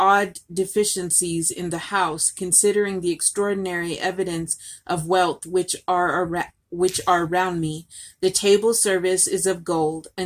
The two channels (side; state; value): both; identical; correlation 1.00